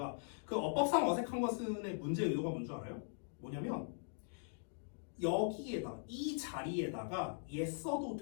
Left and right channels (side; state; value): right; silent; digital silence